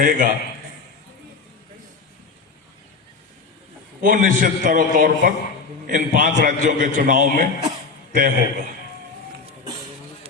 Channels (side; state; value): right; quieter; 4.5 dB